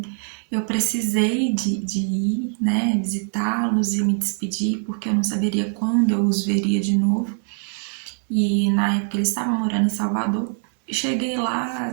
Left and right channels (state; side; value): silent; left; 57 dB below the other